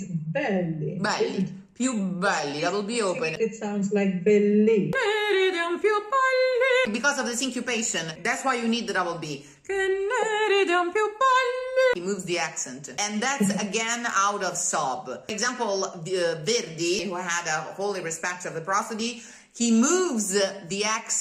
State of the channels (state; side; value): identical; both; correlation 1.00